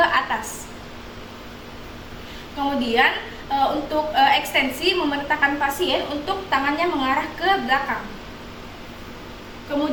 Kemudian untuk ekstensi, memerintahkan pasien untuk tangannya mengarah ke belakang.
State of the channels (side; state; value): both; identical; correlation 1.00